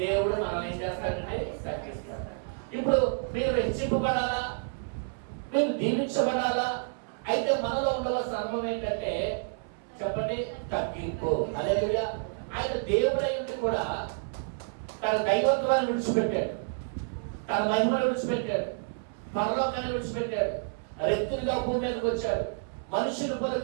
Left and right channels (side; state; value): left; silent; 58 dB below the other